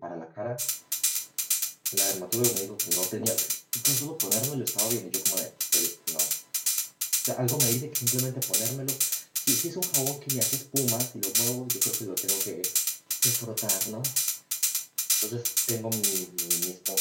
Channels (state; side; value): identical; both; correlation 1.00